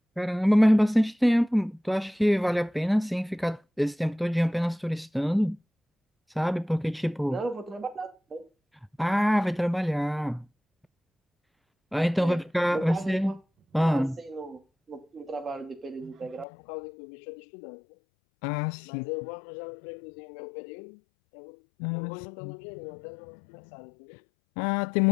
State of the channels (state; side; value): drops out; right; at 16.4 s